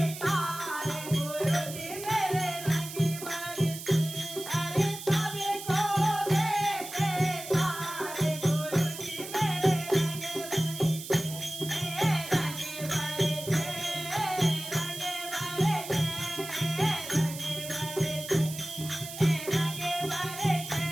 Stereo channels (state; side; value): noise; right; hiss, 10 dB below the sound